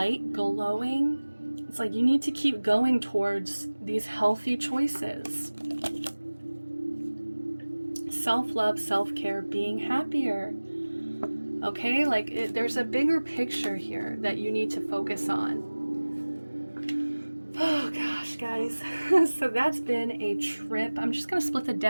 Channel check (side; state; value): both; inverted; correlation -1.00